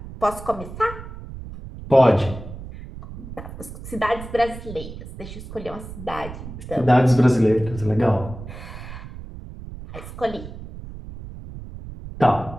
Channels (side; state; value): right; noise; rumble, 12 dB below the sound